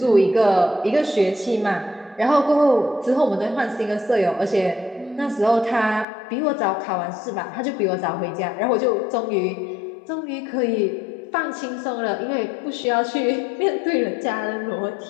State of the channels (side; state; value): right; drops out; at 6.1 s